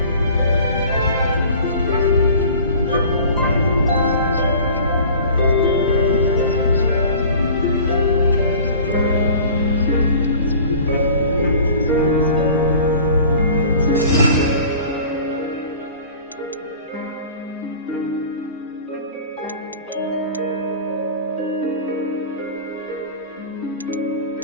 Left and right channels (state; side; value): inverted; both; correlation -0.43